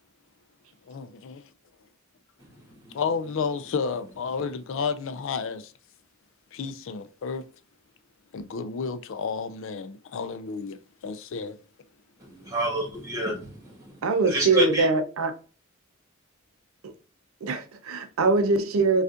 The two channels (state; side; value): normal; both; correlation -0.09